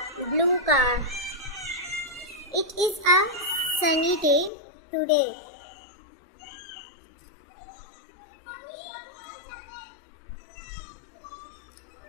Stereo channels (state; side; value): drops out; right; at 4.5 s